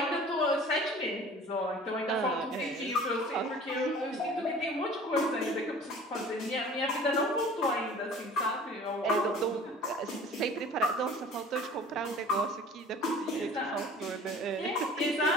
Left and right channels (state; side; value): normal; both; correlation 0.45